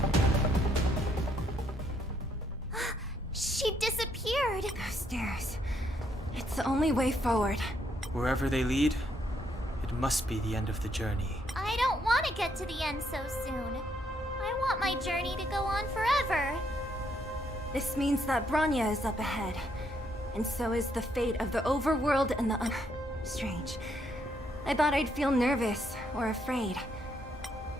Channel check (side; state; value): both; normal; correlation 0.73